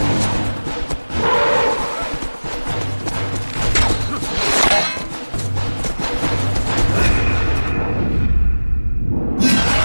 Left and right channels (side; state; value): both; inverted; correlation -1.00